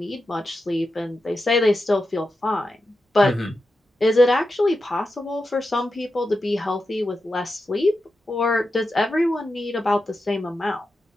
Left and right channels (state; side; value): normal; both; correlation 0.89